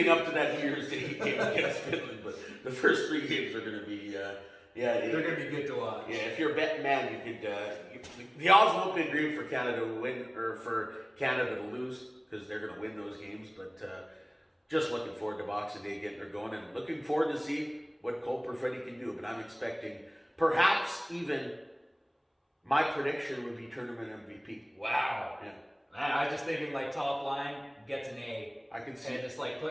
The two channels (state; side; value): identical; both; correlation 1.00